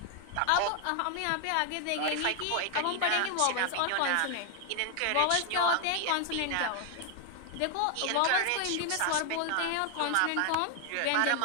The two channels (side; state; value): both; different; correlation 0.00